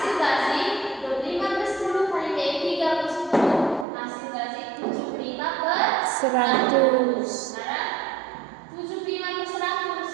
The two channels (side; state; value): left; drops out; at 3.9 s